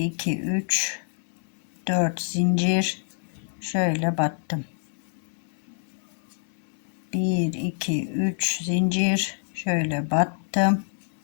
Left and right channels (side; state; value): right; silent; 59 dB below the other